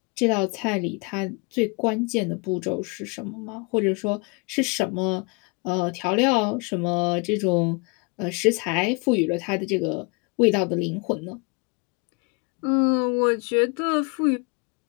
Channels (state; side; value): quieter; right; 30.4 dB